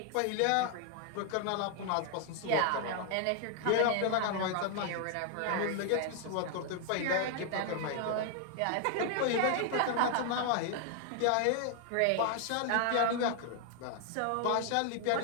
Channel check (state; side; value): different; both; correlation 0.00